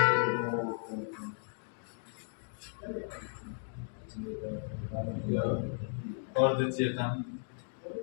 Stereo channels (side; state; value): right; silent; digital silence